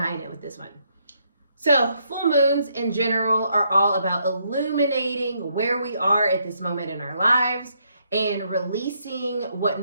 it with this one. So full moons in general are all about illuminating where we are at this moment in our lives and releasing what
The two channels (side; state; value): both; inverted; correlation -0.75